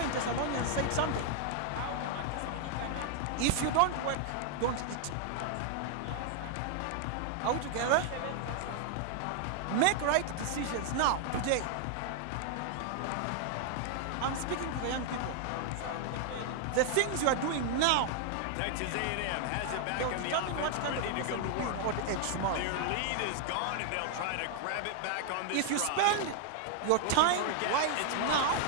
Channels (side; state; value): both; different; correlation 0.00